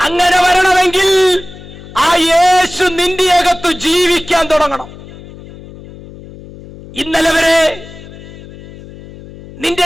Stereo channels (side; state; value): left; noise; hum, 17 dB below the sound